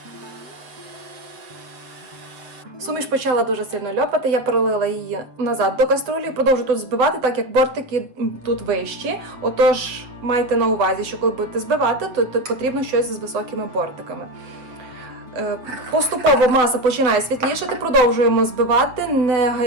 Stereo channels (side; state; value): left; late; 7.5 ms